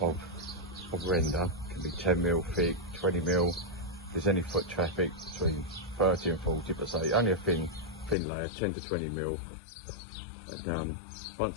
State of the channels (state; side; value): drops out; right; at 8.2 s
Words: render. It can be 10mm thick, 20mm. If there's any foot traffic, between 30 and 40, but say only a thin layer, 10 to 20mm. And once